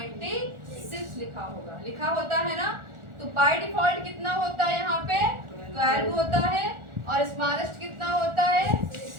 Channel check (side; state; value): left; late; 1.4 ms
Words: लिखा होगा, लिखा होता है ना। तो बाय डिफॉल्ट कितना होता है, यहाँ पे 12 होता है और स्मॉलेस्ट कितना होता है,